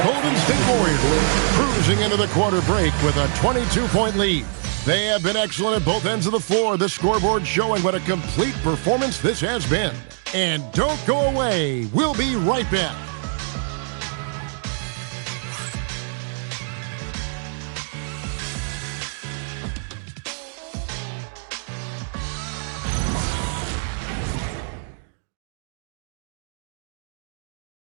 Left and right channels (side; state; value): left; silent; digital silence